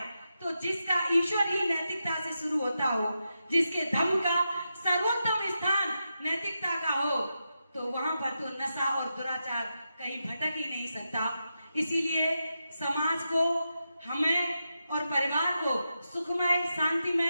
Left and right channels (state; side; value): inverted; both; correlation -0.87